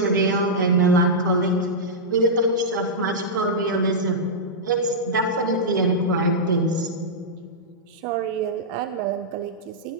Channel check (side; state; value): both; normal; correlation -0.11